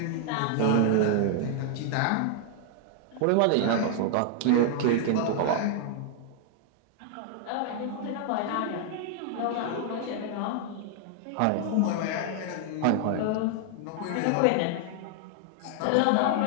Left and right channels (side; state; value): both; different; correlation 0.00